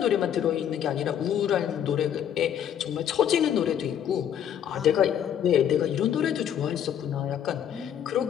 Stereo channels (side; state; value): right; quieter; 9.4 dB